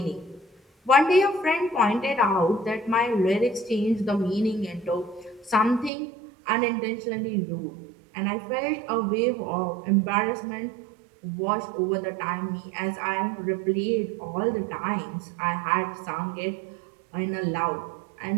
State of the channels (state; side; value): drops out; left; at 5.9 s